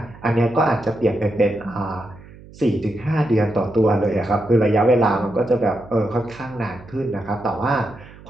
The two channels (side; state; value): right; noise; hum, 20 dB below the sound